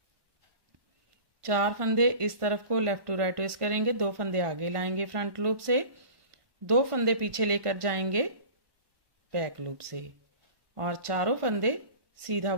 4 फंदे इस तरफ को लेफ्ट टू राइट ट्विस्ट करेंगे, 2 फंदे आगे लाएंगे फ्रंट लूप से, 2 फंदे पीछे लेकर जाएंगे बैक लूप से और चारों फंदे सीधा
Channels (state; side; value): late; left; 1.5 ms